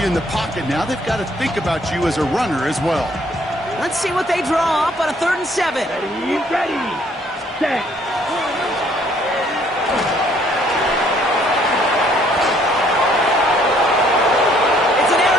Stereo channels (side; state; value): both; normal; correlation 0.63